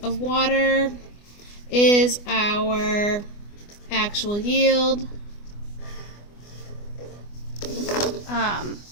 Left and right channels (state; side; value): late; right; 24 ms